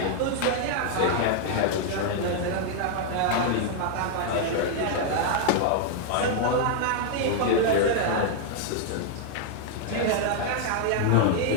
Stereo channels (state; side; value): different; both; correlation 0.00